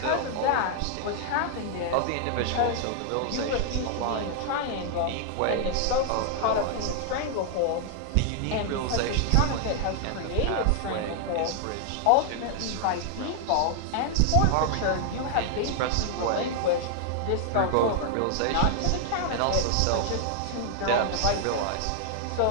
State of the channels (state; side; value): different; both; correlation 0.00